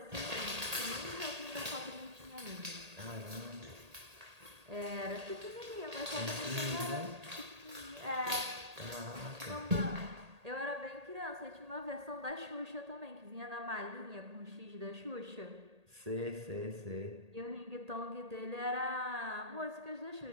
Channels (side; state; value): left; late; 1.8 ms